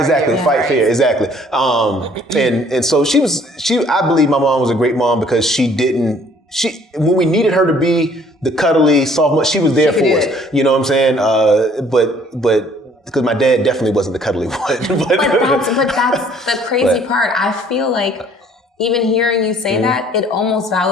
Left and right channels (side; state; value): both; normal; correlation 0.58